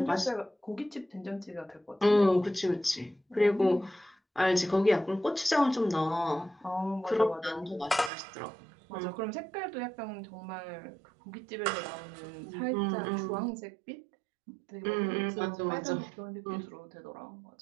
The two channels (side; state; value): left; drops out; at 8.1 s